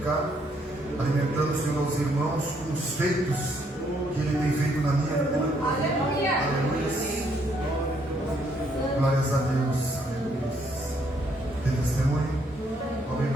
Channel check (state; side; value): normal; both; correlation 0.70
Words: alimentando, Senhor, aos irmãos com os feitos que Ele tem feito na minha vida. Aleluia! Glórias a Deus. Tem testemunho? Vamos